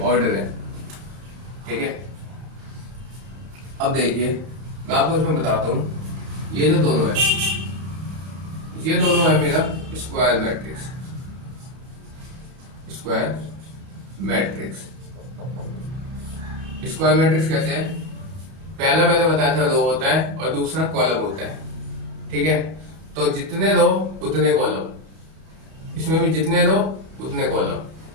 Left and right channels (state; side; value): late; left; 31 ms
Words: है। ठीक है, अब देखिए मैं आपको इसमें बताता हूँ, ये जो दोनों है, ये दोनों है मेरा square matrix. Square matrix, square matrix कैसे है? पहला मैंने बताया था रो होता है और दूसरा कॉलम होता है। ठीक है, तो जितने रो उतने कॉलम, इसमें भी जितने रो उतने कॉलम,